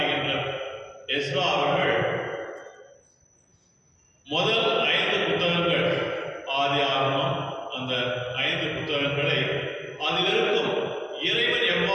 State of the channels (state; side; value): identical; both; correlation 1.00